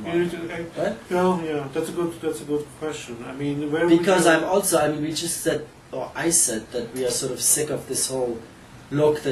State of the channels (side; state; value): both; identical; correlation 1.00